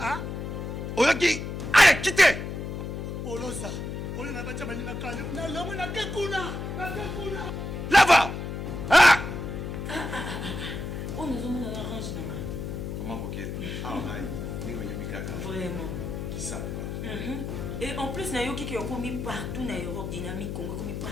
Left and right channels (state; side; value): noise; left; hum, 5 dB below the sound